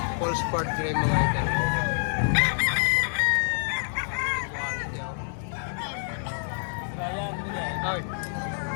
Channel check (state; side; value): silent; right; digital silence